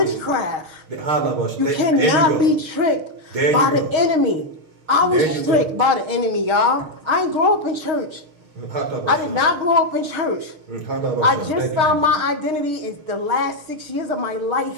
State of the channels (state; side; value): late; left; 6.2 ms